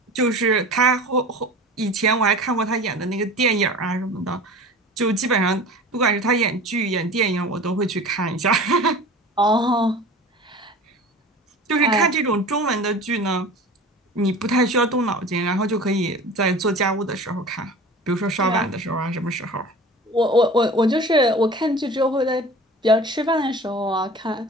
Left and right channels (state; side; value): normal; both; correlation 0.38